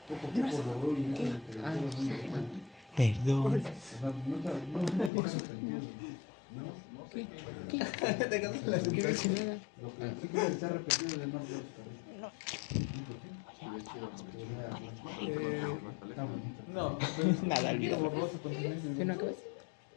Poco a poco rodó y ya como que Ah, todos sí, van- man. Perdón. O sea, no pasa sentido. ¿No? ¿Qué? ¿Qué dice nada? Lo que sí que está repetido de más de no. Está bonito. No, Nada, olvídalo. borroso con silencio. ¿Qué no acabas?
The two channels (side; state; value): right; drops out; at 5.1 s